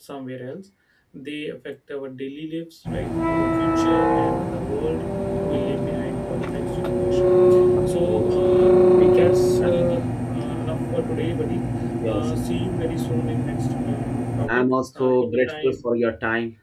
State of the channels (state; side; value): identical; both; correlation 1.00